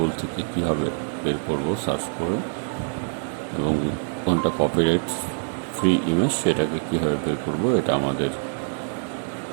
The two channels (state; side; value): silent; left; digital silence